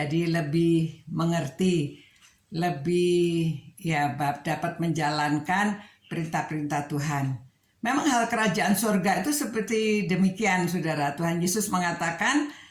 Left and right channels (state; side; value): identical; both; correlation 1.00